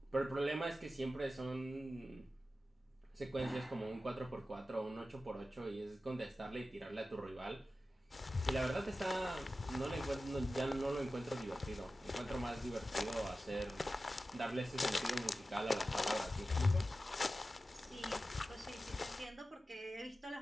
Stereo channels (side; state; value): both; normal; correlation 0.94